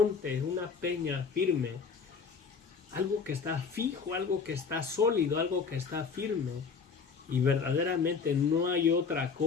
una peña firme, algo que está fijo, algo que está sólido, algo que está firme. Y verdaderamente no hay otra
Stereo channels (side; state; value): right; quieter; 5.5 dB